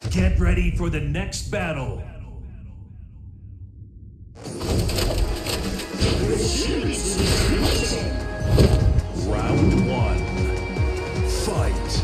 Get ready for the next battle. Round one.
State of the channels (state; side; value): identical; both; correlation 1.00